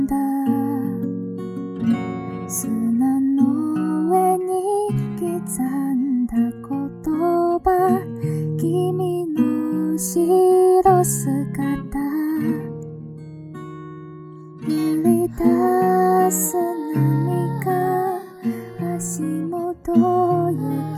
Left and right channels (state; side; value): identical; both; correlation 1.00